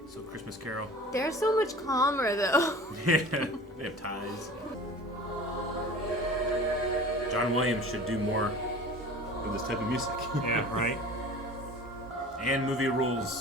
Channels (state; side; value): normal; both; correlation 0.40